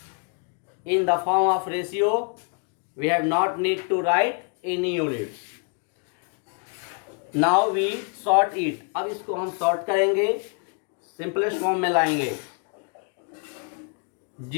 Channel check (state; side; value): quieter; right; 37.6 dB